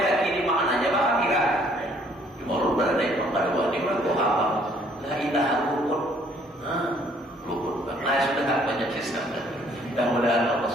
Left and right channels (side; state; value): both; normal; correlation 0.62